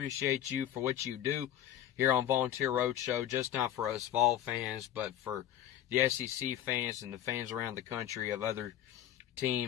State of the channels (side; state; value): right; quieter; 11.5 dB